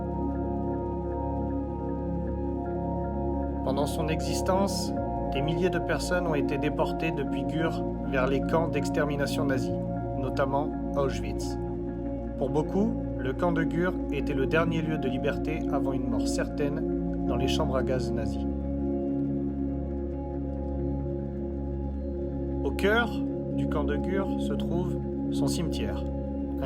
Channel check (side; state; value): both; identical; correlation 1.00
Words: Pendant son existence, des milliers de personnes ont été déportées depuis Gurs vers les camps d'extermination nazis, notamment Auschwitz. Pour beaucoup, le camp de Gurs était le dernier lieu de liberté avant une mort certaine dans les chambres à gaz nazies. Au cœur du camp de Gurs se trouve son cimetière,